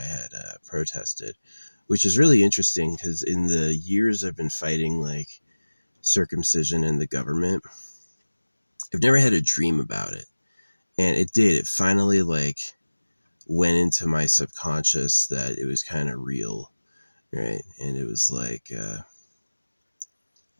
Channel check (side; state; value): both; inverted; correlation -1.00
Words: had protested, which is really interesting because in the years I've been fighting like circumcision in the government, I've never had a dream about it. And it did. It finally like went into my subconscious that it was kind of real, right? And it was like